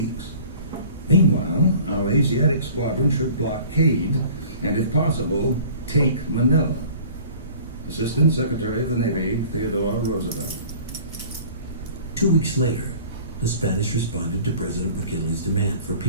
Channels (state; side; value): inverted; both; correlation -0.47